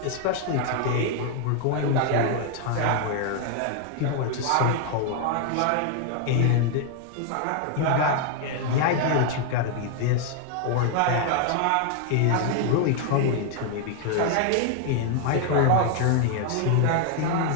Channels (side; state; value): both; different; correlation 0.00